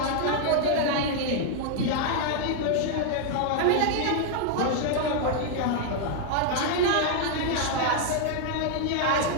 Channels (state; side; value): different; both; correlation 0.00